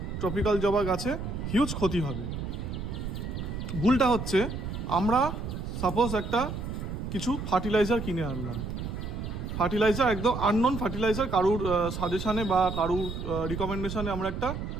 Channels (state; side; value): noise; right; rumble, 5 dB below the sound